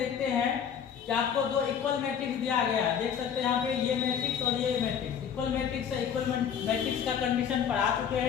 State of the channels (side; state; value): right; quieter; 8.0 dB